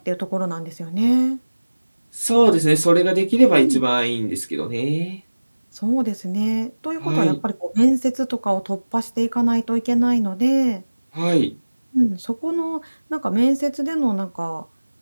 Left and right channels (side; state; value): both; inverted; correlation -1.00